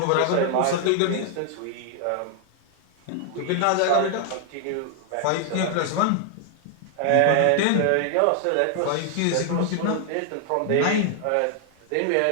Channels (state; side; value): different; both; correlation 0.00